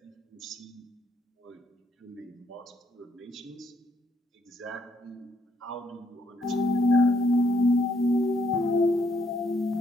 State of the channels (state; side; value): normal; both; correlation 0.71